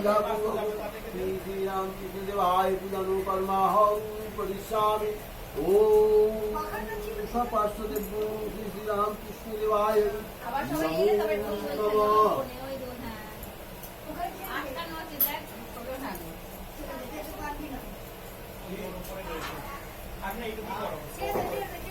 पूर्वक श्री रामकृष्ण देवाय पूजा नो कर्माहं परिश्यामि ओम सपार्श्वदेव श्री रामकृष्ण देवाय আবার সবাই এলে তবে ঠিক হয়ে যাবে। नमः ওই দোন হ্যাঁ। আটটা নয় দেখ ছোট না। আপনি এইটুকু করো ছেড়ে দে, ছেড়ে দে,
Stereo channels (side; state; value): both; identical; correlation 1.00